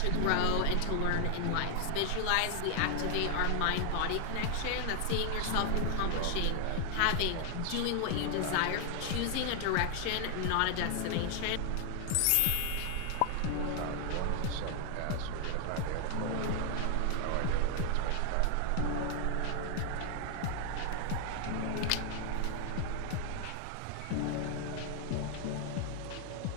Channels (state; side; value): different; both; correlation 0.00